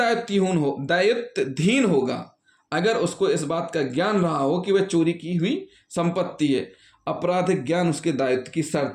होगा अगर उसको इस बात का ज्ञान रहा हो कि वह चोरी की हुई संपत्ति है। आपराधिक ज्ञान उसके दायित्व की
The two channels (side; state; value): both; identical; correlation 1.00